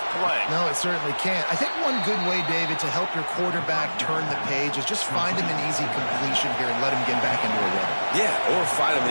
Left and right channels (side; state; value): both; inverted; correlation -1.00